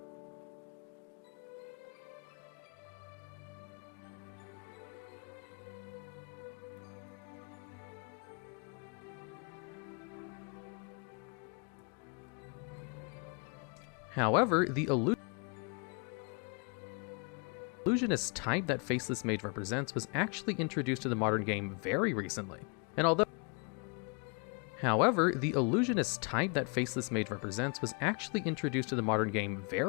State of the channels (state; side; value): quieter; right; 35.3 dB